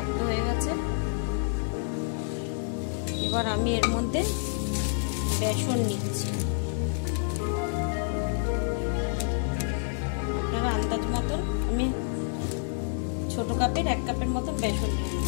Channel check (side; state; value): right; silent; digital silence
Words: হয়ে গেছে। এবার আমি এর মধ্যে বেসন নিচ্ছি। আপনারা আন্দাজ মতন, আমি ছোট কাপের 1 কাপের মতন বেসন নিয়ে